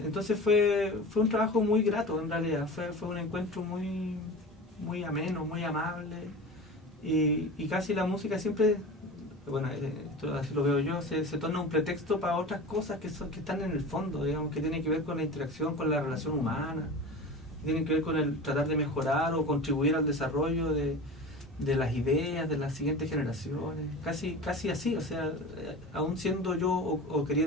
fue un trabajo muy grato, en realidad. Fue un encuentro muy ameno, muy amable, y casi la música siempre, bueno, así lo veo yo, se torna un pretexto para otras cosas que están en el fondo, digamos, que tienen que ver con la interacción, con la relación humana, que tienen que ver con el tratar de mejorar o contribuir al desarrollo de las ideas de las siguientes generaciones, casi así. O sea, aún siendo yo o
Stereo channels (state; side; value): normal; both; correlation 0.32